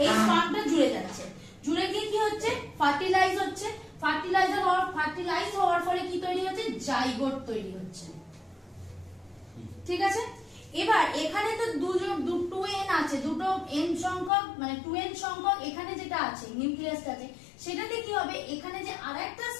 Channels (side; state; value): right; drops out; at 14.3 s